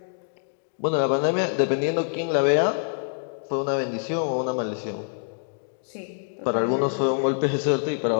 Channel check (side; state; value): right; silent; digital silence